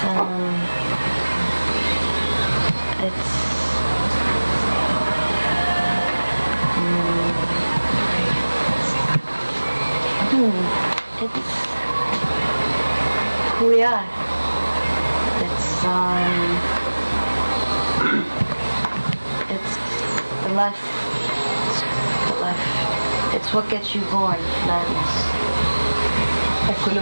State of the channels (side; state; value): both; inverted; correlation -1.00